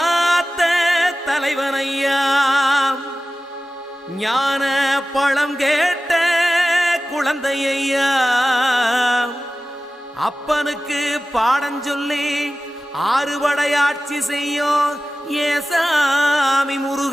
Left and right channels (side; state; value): both; normal; correlation 0.95